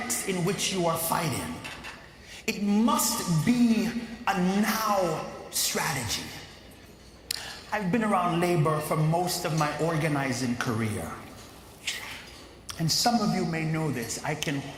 in which you are fighting. It must be a now strategy. I've been around labor for most of my organizing career. And some of you may know this. I can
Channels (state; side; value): identical; both; correlation 1.00